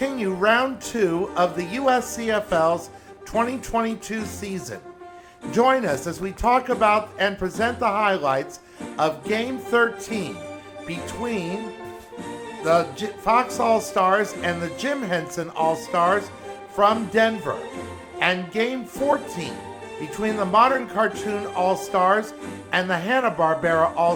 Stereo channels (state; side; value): identical; both; correlation 1.00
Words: round 2 of the USCFL's 2022 season. Join us as we talk about and present the highlights of Game 13 between the Fox All-Stars and the Jim Henson All-Stars from Denver, and Game 14 between the Modern Cartoon All-Stars and the Hanna-Barbera